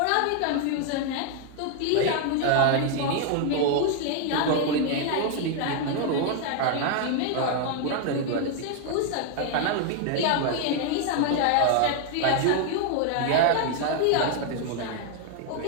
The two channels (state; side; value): different; both; correlation 0.00